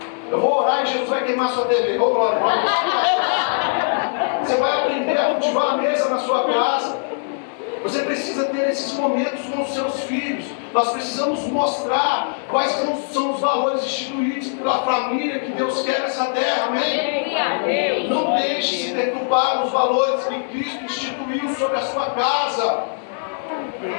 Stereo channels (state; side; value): silent; right; digital silence